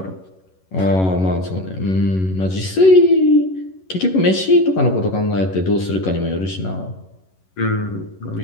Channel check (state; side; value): late; right; 11 ms